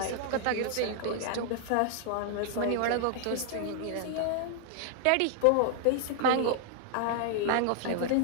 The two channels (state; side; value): different; both; correlation 0.00